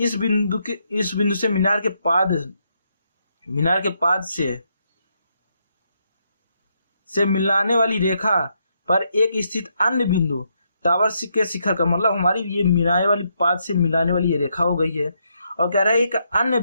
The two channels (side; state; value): both; inverted; correlation -0.78